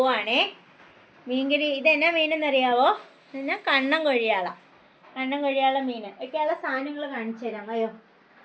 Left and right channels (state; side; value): identical; both; correlation 1.00